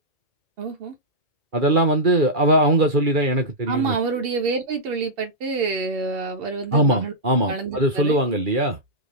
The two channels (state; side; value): late; left; 2.4 ms